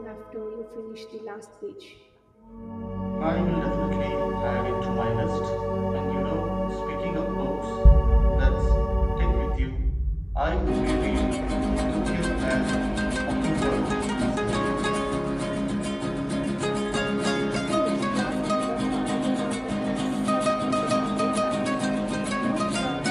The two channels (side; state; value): both; identical; correlation 1.00